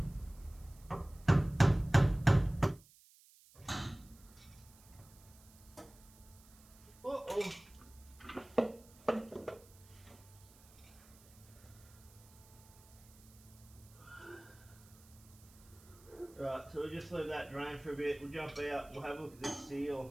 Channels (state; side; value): noise; right; hiss, 24 dB below the sound